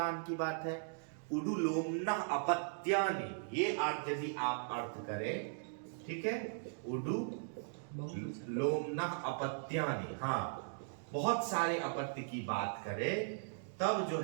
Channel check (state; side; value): silent; left; digital silence